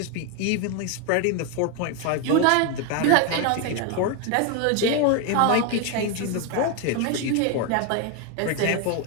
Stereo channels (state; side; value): different; both; correlation 0.01